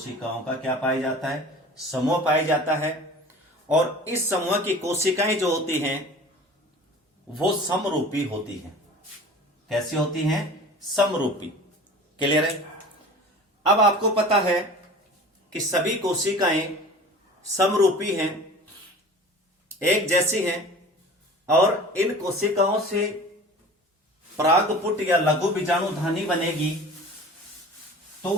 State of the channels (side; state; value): both; normal; correlation 0.40